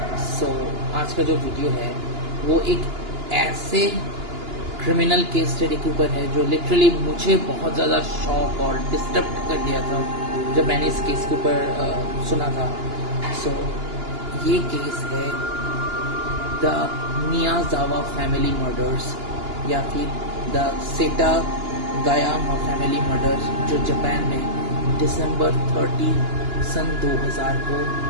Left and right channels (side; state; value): left; late; 2.9 ms